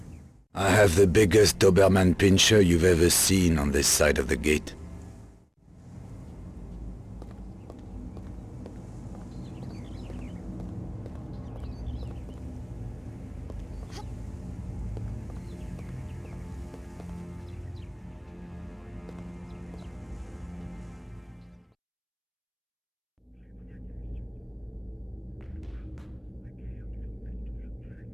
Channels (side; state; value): both; identical; correlation 1.00